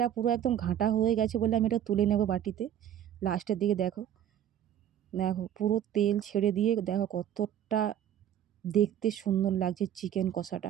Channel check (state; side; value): quieter; left; 10.5 dB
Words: পুরো একদম ঘাঁটা হয়ে গেছে বলে আমি এটা তুলে নেব বাটিতে। লাস্টের দিকে দেখো, দেখো পুরো তেল ছেড়ে দিয়ে দেখো কতটা দেখতে সুন্দর লাগছে চিকেন